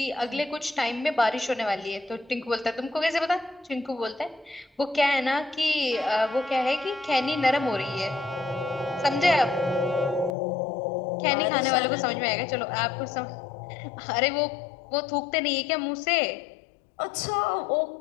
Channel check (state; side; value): drops out; right; at 10.4 s